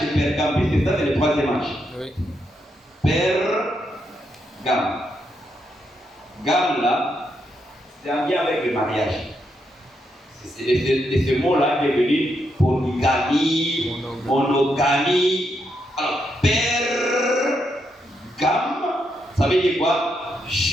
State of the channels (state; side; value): normal; both; correlation 0.80